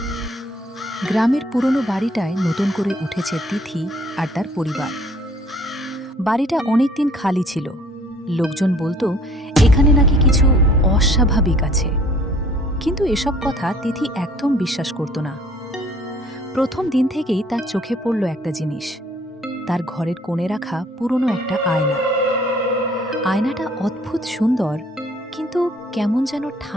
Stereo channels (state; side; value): normal; both; correlation 0.57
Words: গ্রামের পুরনো বাড়িটায় নতুন করে উঠেছে তিথি আর তার পরিবার। বাড়িটা অনেকদিন খালি ছিল। লোকজন বলতো এখানে নাকি কিছু অস্বাভাবিক আছে, কিন্তু এসব কথা তিথি একদম বিশ্বাস করত না। প্রথম দিন থেকেই তার চোখে পড়ল একটা জিনিস, তার ঘরের কোণে রাখা পুরনো একটা আয়না। আয়নাটা অদ্ভুত সুন্দর, কিন্তু কেমন যেন